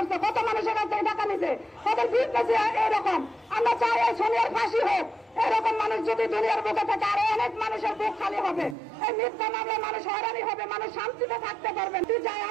কত মানুষের কাছ থেকে টাকা নিছে ওদের বিজনেস এরকম আমরা চাই এই সোনিয়ার ফাঁসি হোক এরকম মানুষ যদি দুনিয়ার বুকে থাকে আরো অনেক মানুষের বুক খালি হবে এই মিথ্যা মামলায় মানুষ হয়রানি হবে মানুষ শান্তিতে থাকতে পারবেন চাই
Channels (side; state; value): left; drops out; at 8.8 s